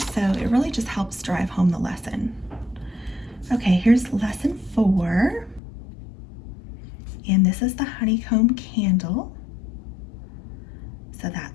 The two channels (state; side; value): drops out; right; at 5.6 s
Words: So it really just helps drive home the lesson. Okay, here's lesson 4. And this is the honeycomb candle. So